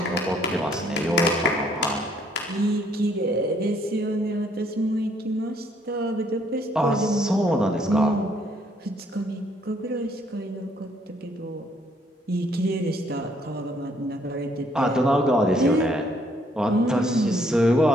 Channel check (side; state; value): both; normal; correlation 0.66